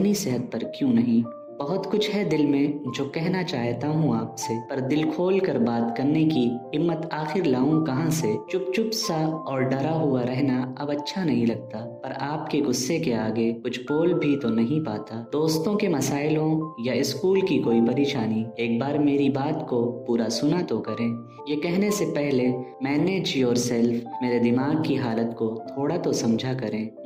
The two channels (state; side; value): identical; both; correlation 1.00